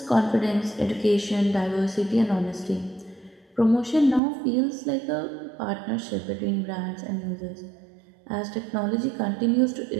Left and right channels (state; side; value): drops out; left; at 4.2 s